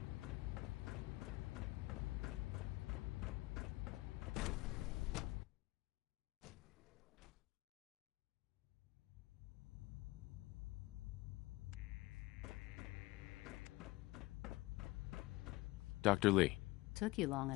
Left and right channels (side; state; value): right; quieter; 20.5 dB